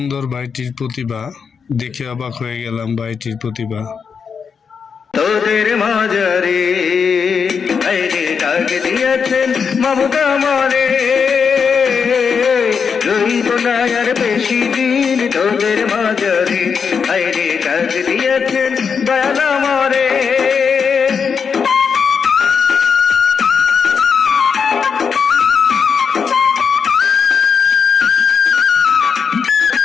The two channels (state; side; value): quieter; right; 6.2 dB